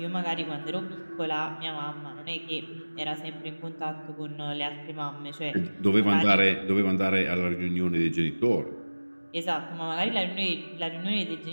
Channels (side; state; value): both; inverted; correlation -1.00